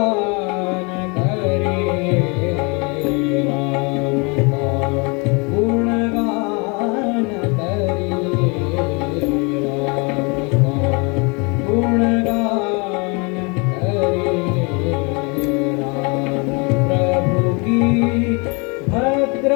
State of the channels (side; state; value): right; quieter; 30.8 dB